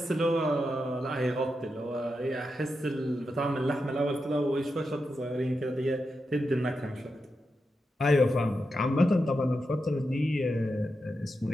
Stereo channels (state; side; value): normal; both; correlation 0.87